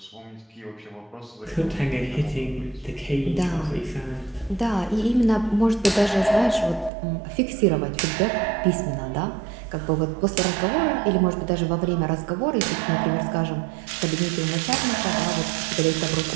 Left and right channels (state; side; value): drops out; left; at 6.9 s